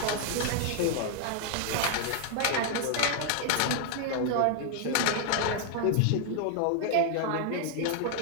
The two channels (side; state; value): both; different; correlation 0.00